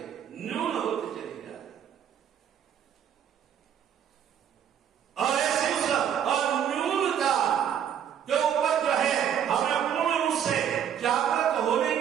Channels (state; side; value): quieter; left; 9.1 dB